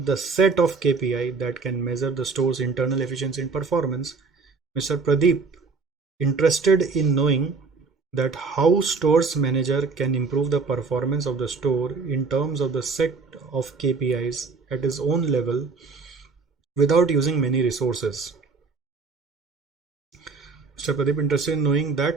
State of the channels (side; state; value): left; quieter; 4.5 dB